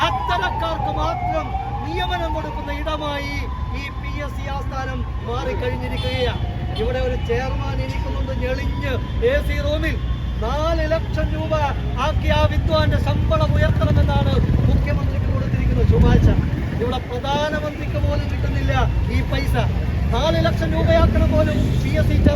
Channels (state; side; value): identical; both; correlation 1.00